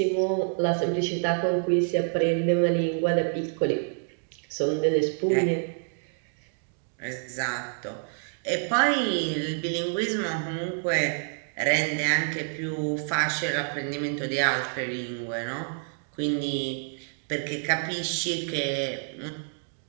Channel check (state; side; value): silent; left; 60 dB below the other